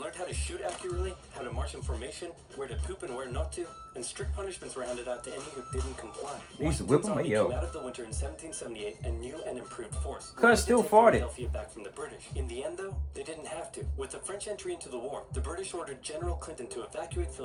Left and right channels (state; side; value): identical; both; correlation 1.00